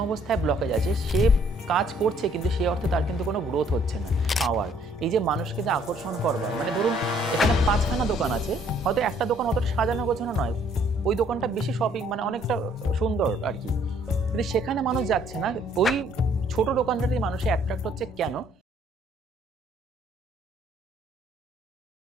অবস্থায় ব্লকেজ আছে, সে কাজ করছে কিন্তু সেই অর্থে তার কিন্তু কোনো গ্রোথ হচ্ছে না। পাওয়ার, এই যে মানুষকে যে আকর্ষণ করবার, মানে ধরুন এখানে 5খানা দোকান আছে, হয়তো একটা দোকান অতটা সাজানো গোছানো নয়, ওই দোকানটা বেশি শপিং মানে অনেকটা সুন্দর আর কি, কিন্তু সেখানে মানুষ যাচ্ছে না। ওই ছোট দোকানটাতেই মানুষে অ্যাট্রাক্ট হচ্ছে কেন?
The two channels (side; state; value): both; normal; correlation 0.63